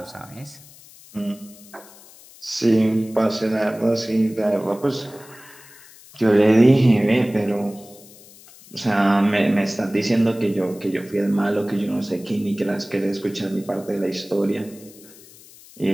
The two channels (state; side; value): noise; left; hiss, 22 dB below the sound